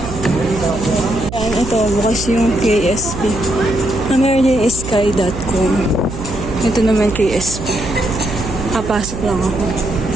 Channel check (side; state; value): right; noise; hum, 9 dB below the sound